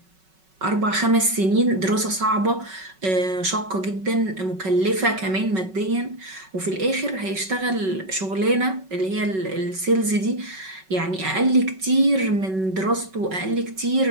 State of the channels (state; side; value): late; left; 5.3 ms